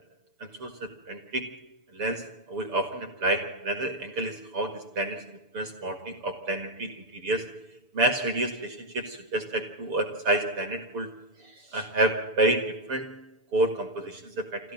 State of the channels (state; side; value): late; left; 6.9 ms